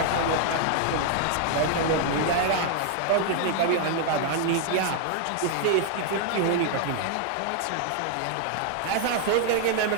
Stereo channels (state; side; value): different; both; correlation 0.00